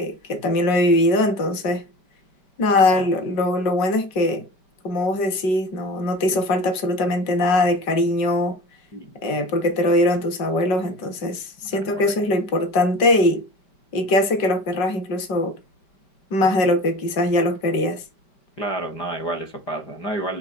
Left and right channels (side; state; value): right; late; 5.1 ms